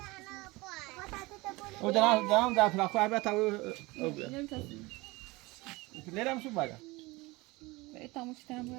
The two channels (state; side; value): quieter; left; 22.6 dB